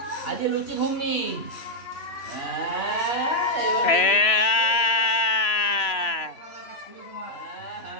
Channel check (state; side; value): late; right; 3.0 ms